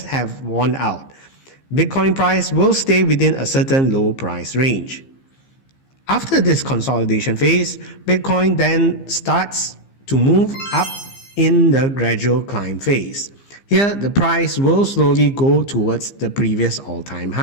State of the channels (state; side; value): late; right; 15 ms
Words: have worn out. Bitcoin price will stay within a certain low price range. After this consolidation phase, Bitcoin then starts to move up in the gradual climb phase. Here, the price will slowly go towards the previous all-time